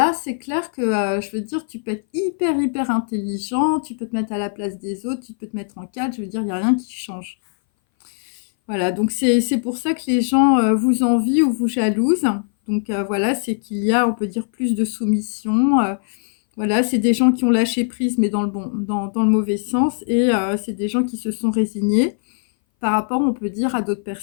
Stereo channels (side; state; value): right; silent; 60 dB below the other